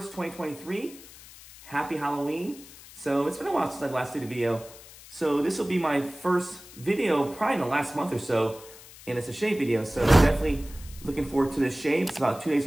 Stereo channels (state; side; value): noise; left; hiss, 19 dB below the sound